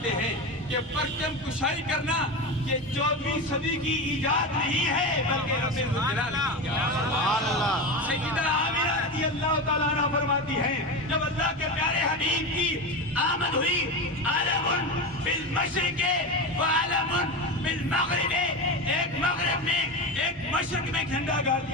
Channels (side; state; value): both; normal; correlation 0.21